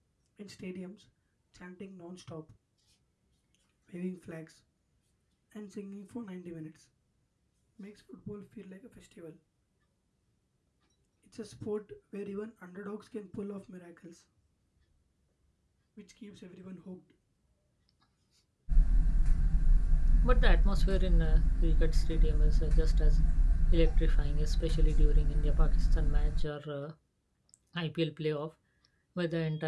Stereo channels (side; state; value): both; identical; correlation 1.00